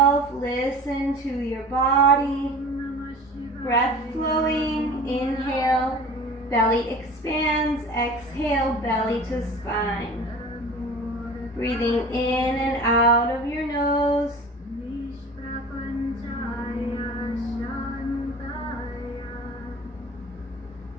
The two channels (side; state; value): both; normal; correlation 0.40